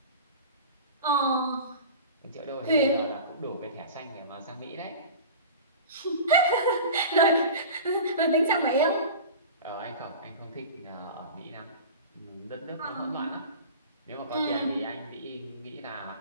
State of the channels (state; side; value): inverted; both; correlation -0.35